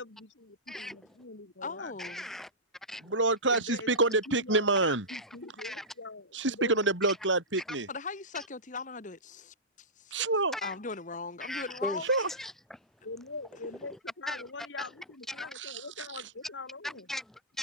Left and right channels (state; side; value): normal; both; correlation -0.19